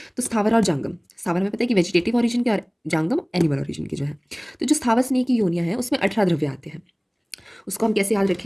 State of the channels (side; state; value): both; identical; correlation 1.00